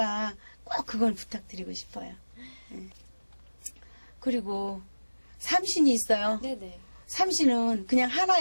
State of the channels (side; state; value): both; inverted; correlation -1.00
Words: 꼭 그건 부탁드리고 싶어요. 그리고 삼신이 있어요. 네네. 삼신은 그냥